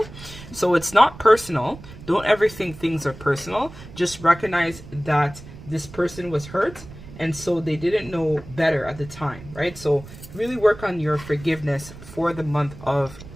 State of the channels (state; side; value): noise; right; rumble, 16 dB below the sound